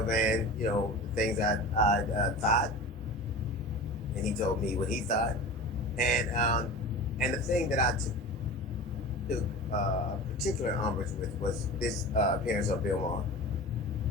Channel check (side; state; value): both; normal; correlation 0.33